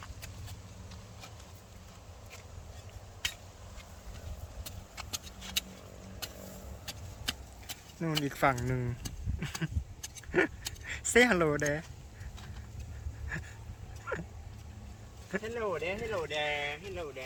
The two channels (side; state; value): both; identical; correlation 1.00